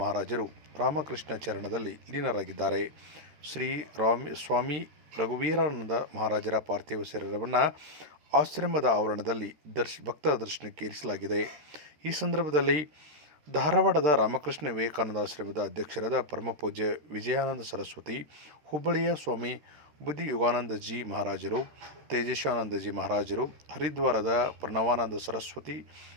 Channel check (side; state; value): left; late; 13 ms